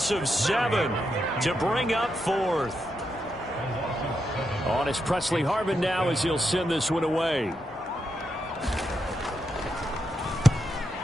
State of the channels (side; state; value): both; normal; correlation 0.84